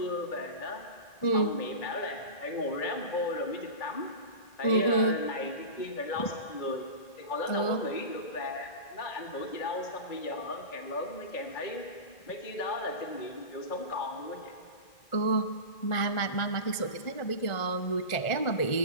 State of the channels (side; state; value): right; late; 1.4 ms